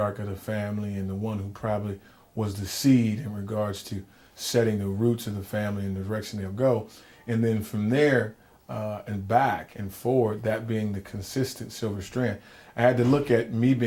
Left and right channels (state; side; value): identical; both; correlation 1.00